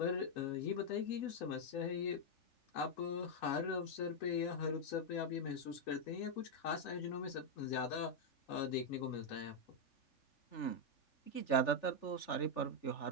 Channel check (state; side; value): late; right; 3.4 ms